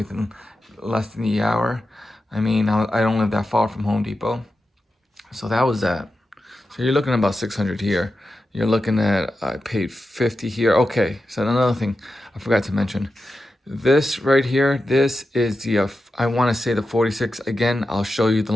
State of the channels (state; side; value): normal; both; correlation 0.91